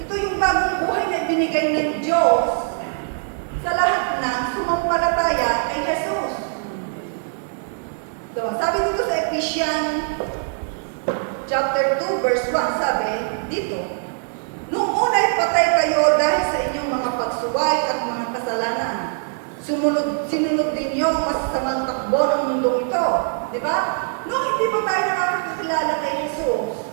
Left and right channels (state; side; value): silent; left; 59 dB below the other